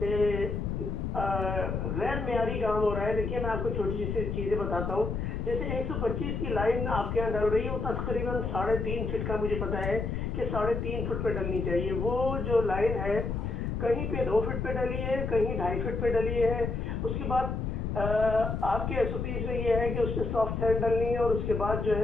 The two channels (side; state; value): left; noise; rumble, 2 dB below the sound